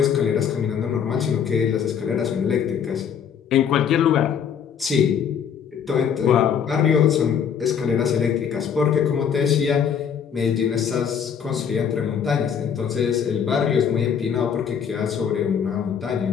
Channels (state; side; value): quieter; right; 7.7 dB